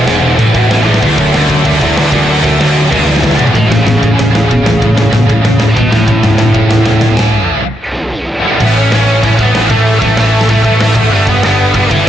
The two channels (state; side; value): normal; both; correlation 0.82